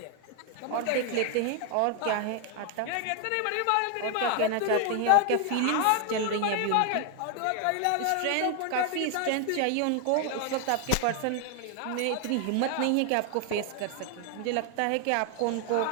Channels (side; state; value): both; different; correlation 0.00